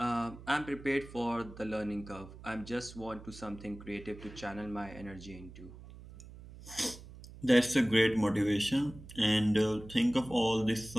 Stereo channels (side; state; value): right; noise; hum, 16 dB below the sound